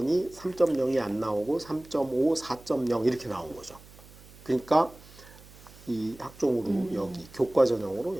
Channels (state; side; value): noise; right; hum, 22 dB below the sound